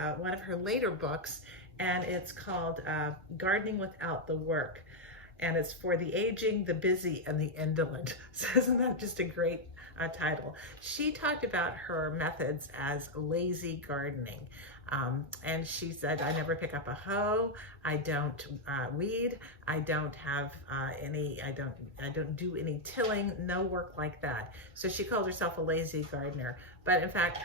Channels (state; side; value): normal; both; correlation 0.01